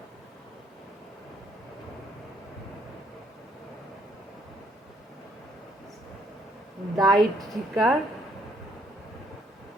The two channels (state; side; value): normal; both; correlation 0.67